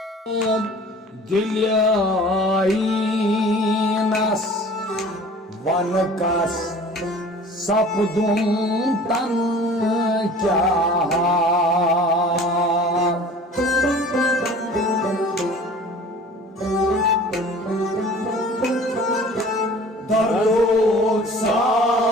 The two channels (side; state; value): both; normal; correlation 0.45